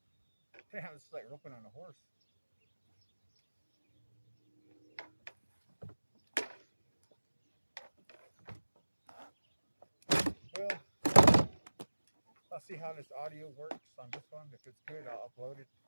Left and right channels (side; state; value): both; inverted; correlation -1.00